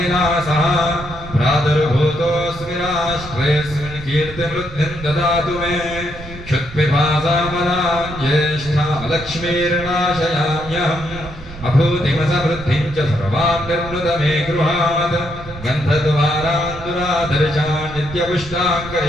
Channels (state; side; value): noise; right; rumble, 15 dB below the sound